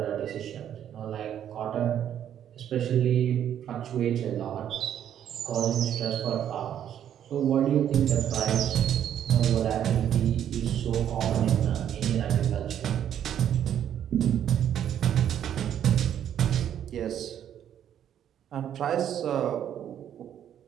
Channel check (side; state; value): left; quieter; 10.0 dB